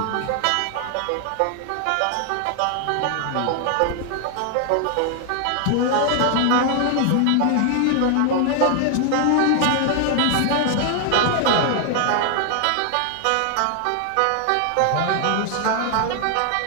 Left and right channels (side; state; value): both; different; correlation 0.00